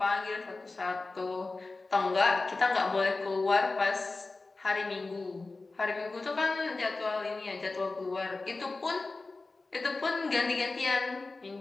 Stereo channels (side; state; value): right; quieter; 3.5 dB